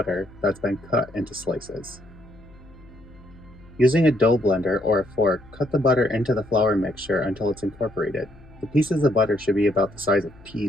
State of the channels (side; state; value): left; noise; hum, 23 dB below the sound